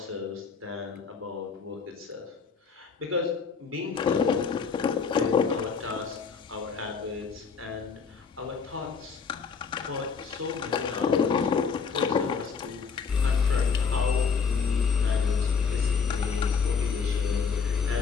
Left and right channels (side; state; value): right; quieter; 5.7 dB